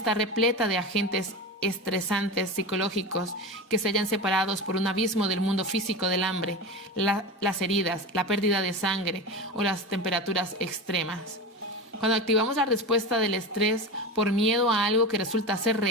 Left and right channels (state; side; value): normal; both; correlation 0.25